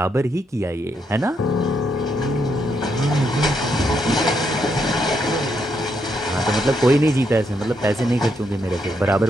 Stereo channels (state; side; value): normal; both; correlation 0.78